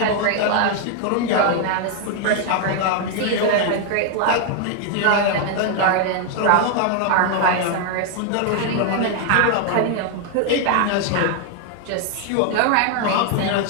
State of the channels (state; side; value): different; both; correlation 0.00